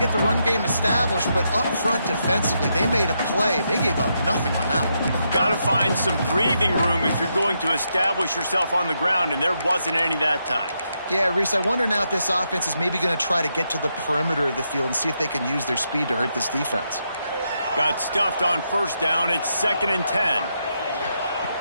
the run game established, but up front defensively, they made a play. They gave up nothing on that one. Got to find some breathing room if you're going to establish yourself on the ground, and there wasn't any that time. Yeah, Reese, I wonder now if this offense is maybe going to try to get to the perimeter of the field and see if they can use their speed to hurt this defense. Got stuffed on first down. It's 2nd and 10.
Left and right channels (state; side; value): inverted; both; correlation -0.81